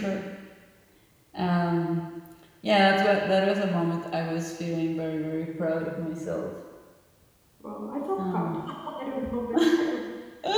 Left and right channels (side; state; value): both; identical; correlation 1.00